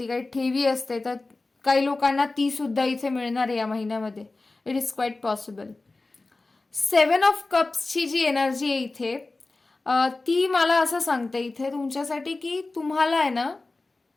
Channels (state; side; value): quieter; right; 3.3 dB